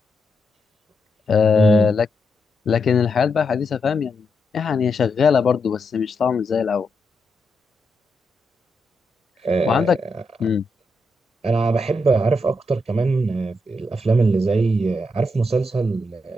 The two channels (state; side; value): normal; both; correlation 0.83